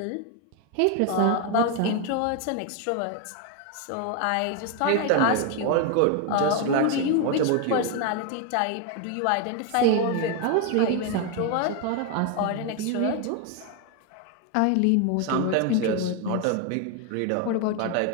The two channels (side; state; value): both; different; correlation 0.01